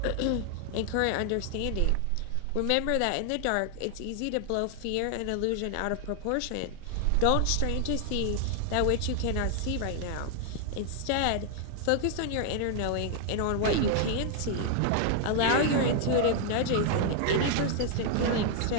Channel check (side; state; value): both; different; correlation 0.00